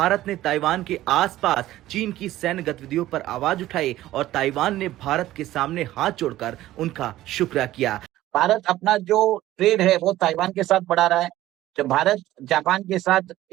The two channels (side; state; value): left; quieter; 15.0 dB